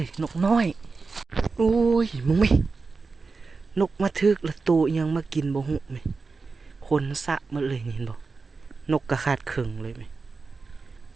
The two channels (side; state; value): left; quieter; 4.3 dB